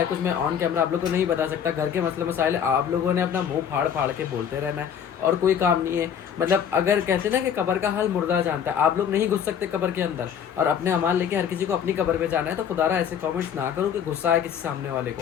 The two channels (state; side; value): quieter; right; 8.3 dB